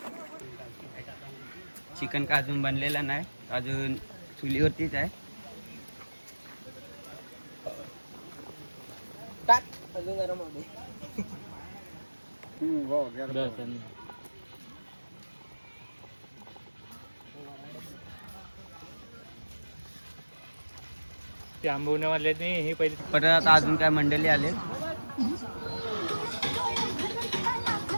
चिकन का अजून बनलेलं नाही, अजून चुलीवरतीच आहे. ते आंबवण्यावाले हे पहिले परत आता अजून काय मंडळी आले.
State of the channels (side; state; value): both; inverted; correlation -1.00